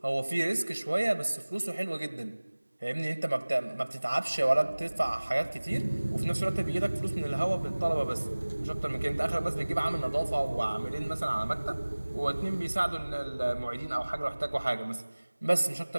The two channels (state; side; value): inverted; both; correlation -1.00